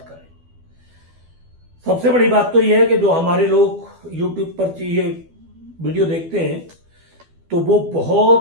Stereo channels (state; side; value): late; left; 12 ms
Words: सबसे बड़ी बात तो यह है कि जो हमारे लोग YouTube पर ये वीडियो देखते हैं तो वो